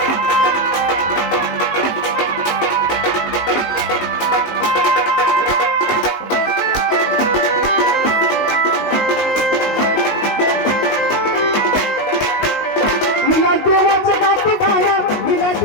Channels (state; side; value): late; right; 19 ms